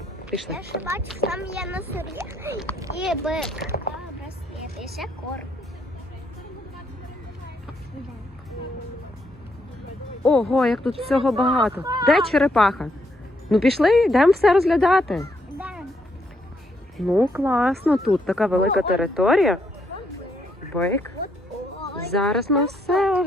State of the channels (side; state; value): both; normal; correlation 0.75